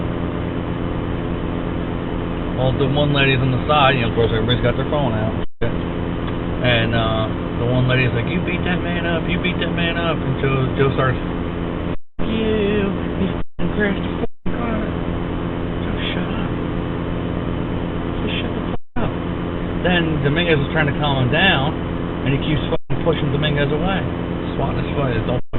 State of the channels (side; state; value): both; identical; correlation 1.00